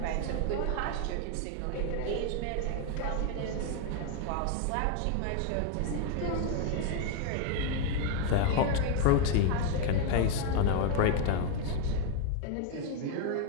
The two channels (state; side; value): different; both; correlation 0.01